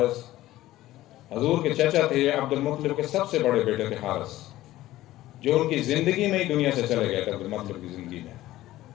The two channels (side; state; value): right; quieter; 15.6 dB